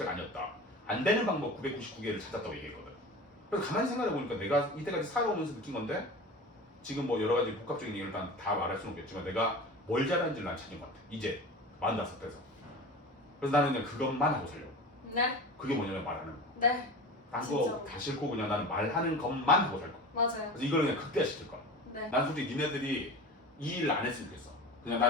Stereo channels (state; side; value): normal; both; correlation 0.33